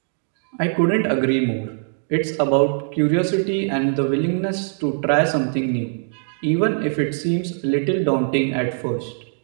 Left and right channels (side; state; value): left; silent; digital silence